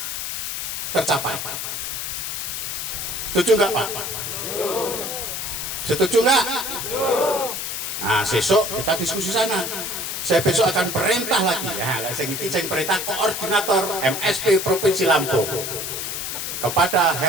tercapai. Setuju nggak Pak? Setuju nggak? Nah besok kita diskusi sana. Saya besok akan perintah lagi ya, saya perintah koordinator MSP Provinsi Lampung kepada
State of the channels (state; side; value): noise; left; hiss, 4 dB below the sound